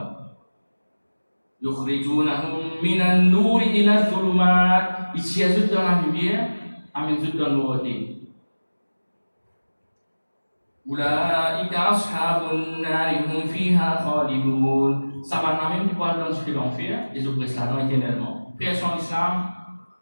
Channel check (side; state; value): both; inverted; correlation -1.00